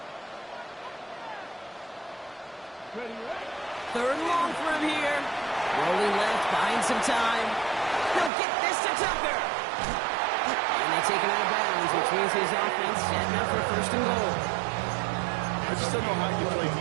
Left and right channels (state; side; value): drops out; left; at 8.3 s